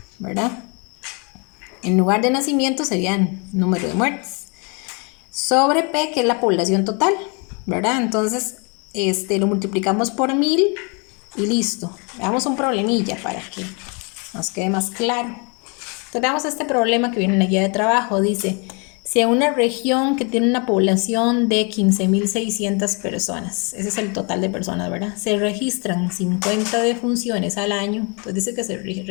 ¿verdad? En lugar de nacimientos serían número de muertes. Sobre P, que es la población total, ¿verdad? Entonces, lo multiplicamos por 1000 y listo. Veamos un problemilla para que nos quede más claro. Entonces, veamos este problema que viene en la guía de trabajo. Dice, si en una región que tiene una población de 15.600 personas, ese es el total de personas, ¿verdad? Se registran 50 defunciones al año. Entonces dice que se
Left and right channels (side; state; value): right; quieter; 33.2 dB